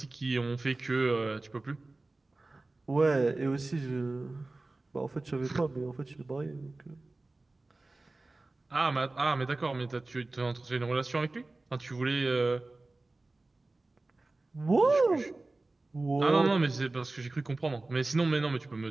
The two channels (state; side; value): quieter; left; 3.1 dB